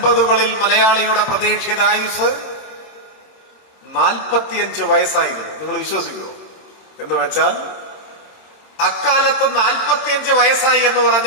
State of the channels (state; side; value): late; right; 26 ms